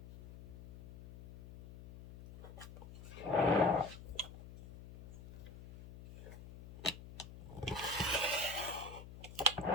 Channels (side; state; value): left; noise; hum, 15 dB below the sound